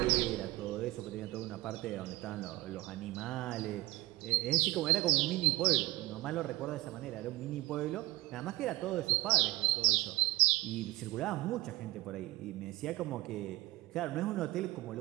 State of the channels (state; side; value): quieter; left; 19.6 dB